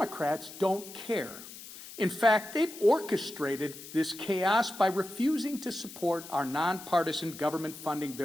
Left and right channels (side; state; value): left; noise; hiss, 14 dB below the sound